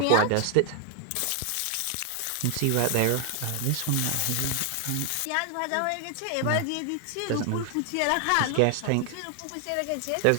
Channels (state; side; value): different; both; correlation 0.00